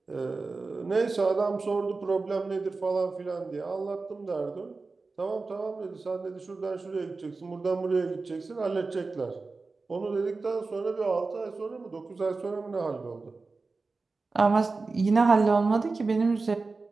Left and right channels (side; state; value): left; quieter; 3.9 dB